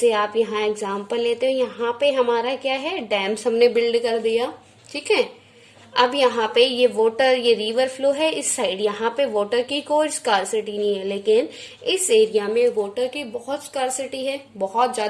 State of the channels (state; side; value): identical; both; correlation 1.00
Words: आप यहाँ example लेते हो, यहाँ पे हमारा क्या है, डैम्स हमने बिल्ड कर दिया, ठीक है. अब यहाँ पे ये वाटर, ये रिवर फ्लो है इस साइड, यहाँ पे वाटर की कोई स्कार्सिटी नहीं है, लेकिन इस एरिया में वाटर की बहुत स्कार्सिटी है, बहुत